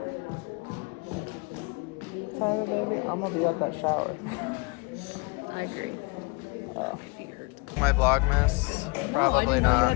Sorry, baby. I'm gonna be at that shower. I agree. My Vlogmas? Probably not. You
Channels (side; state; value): right; quieter; 28.2 dB